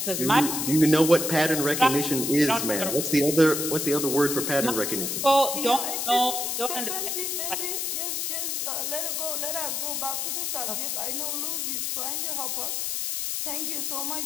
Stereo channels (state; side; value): noise; left; hiss, 1 dB below the sound